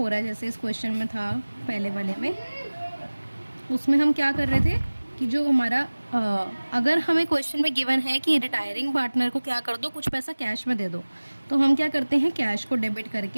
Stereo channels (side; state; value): both; inverted; correlation -1.00